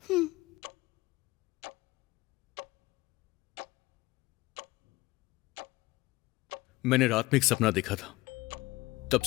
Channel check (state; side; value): quieter; right; 20.2 dB